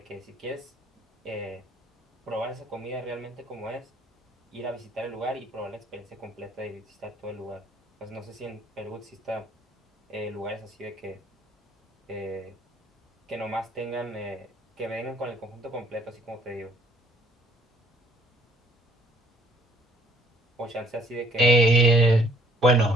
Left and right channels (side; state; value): both; normal; correlation 0.61